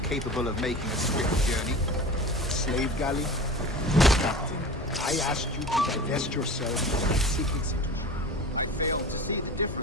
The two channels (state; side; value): normal; both; correlation 0.35